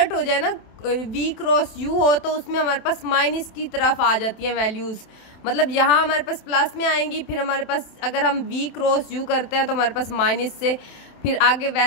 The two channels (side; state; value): right; late; 27 ms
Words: हो जाए ना, v क्रॉस u हो, तो उसमें हमारे पास माइनस की तरफ आ जाती हैं वैल्यूज़। मतलब यहाँ हमारे पास प्लस में आएंगी, फिर हमारे पास अगर हम v क्रॉस u करते हैं तो हमारे पास माइनस से फिर आगे